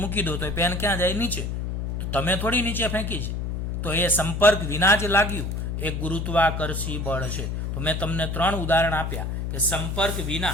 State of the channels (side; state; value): left; noise; hum, 3 dB below the sound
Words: દો તો એ પેન ક્યાં જાય? નીચે. તો તમે થોડી નીચે ફેંકી છે. તો એ સંપર્ક વિના જ લાગ્યું એ ગુરુત્વાકર્ષી બળ છે. તો મેં તમને 3 ઉદાહરણ આપ્યા કે સંપર્ક